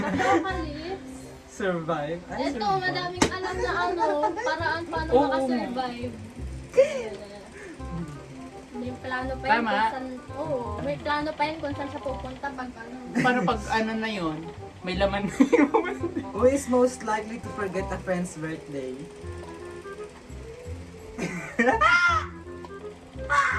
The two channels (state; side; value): identical; both; correlation 1.00